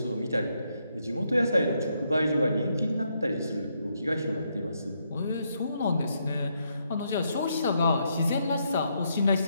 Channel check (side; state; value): both; inverted; correlation -0.77